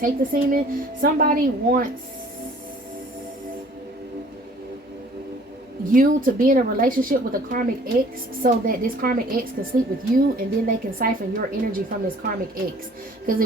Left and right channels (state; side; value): normal; both; correlation 0.53